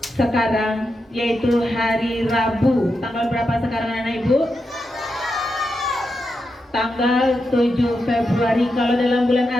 sekarang, yaitu hari Rabu, tanggal berapa sekarang anak ibu? Tanggal 7 Februari. Kalau dalam bulan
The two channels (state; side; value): normal; both; correlation 0.87